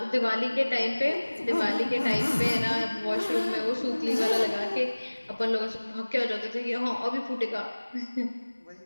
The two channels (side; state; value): both; inverted; correlation -1.00